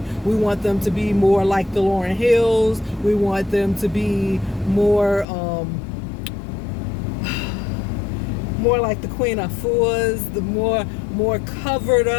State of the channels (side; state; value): right; drops out; at 5.2 s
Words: We want them to be more like the Lauryn Hills. We want them to be more more like the Queen Afus, the more covered